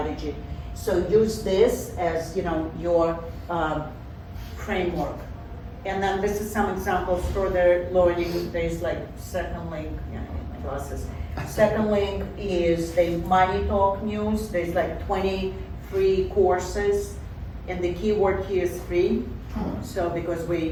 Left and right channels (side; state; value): both; identical; correlation 1.00